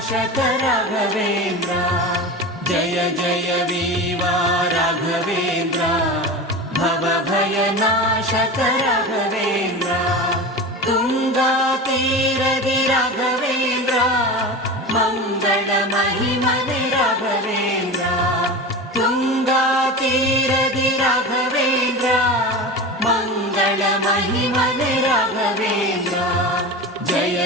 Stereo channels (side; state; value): both; normal; correlation 0.28